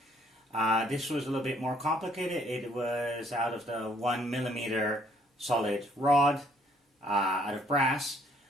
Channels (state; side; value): normal; both; correlation 0.64